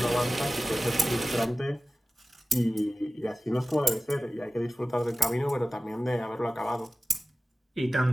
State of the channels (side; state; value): both; normal; correlation 0.96